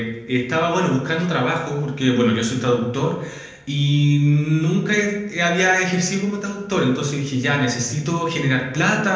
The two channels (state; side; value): identical; both; correlation 1.00